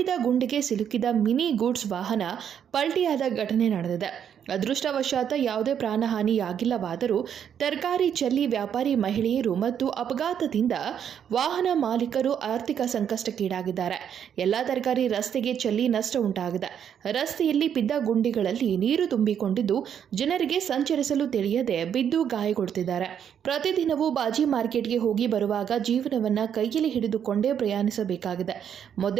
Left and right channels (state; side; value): quieter; left; 8.6 dB